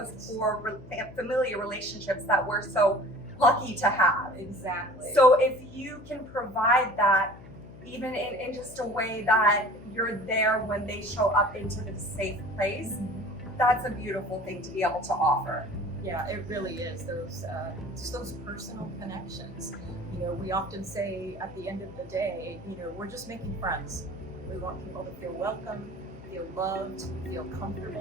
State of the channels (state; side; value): noise; left; hum, 17 dB below the sound